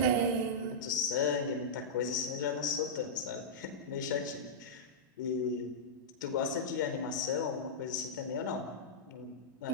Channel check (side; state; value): both; normal; correlation -0.11